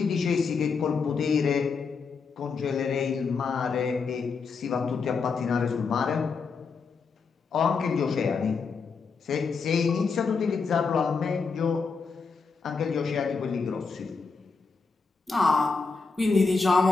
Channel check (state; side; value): quieter; right; 4.9 dB